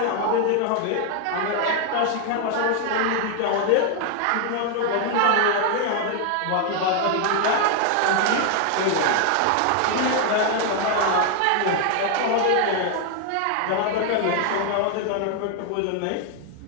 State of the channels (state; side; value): different; both; correlation 0.00